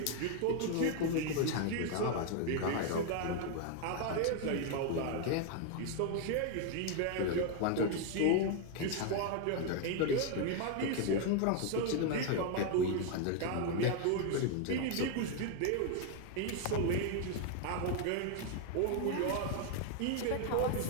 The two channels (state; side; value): different; both; correlation 0.01